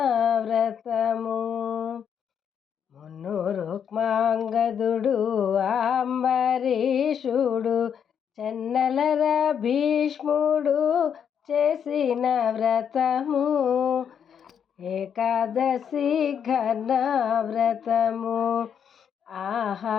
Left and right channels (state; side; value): quieter; right; 8.0 dB